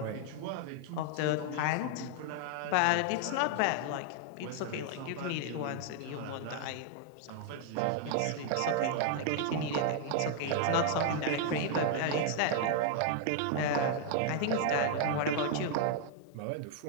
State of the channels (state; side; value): different; both; correlation 0.00